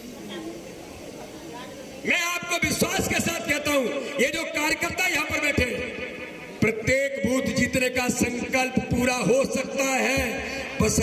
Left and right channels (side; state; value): both; identical; correlation 1.00